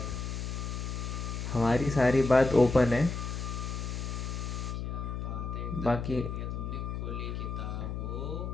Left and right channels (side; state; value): left; noise; hum, 4 dB below the sound